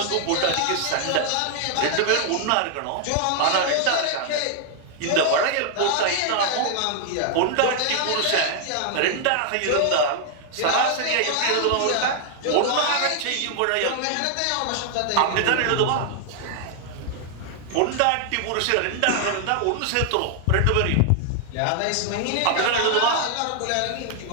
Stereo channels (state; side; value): different; both; correlation 0.00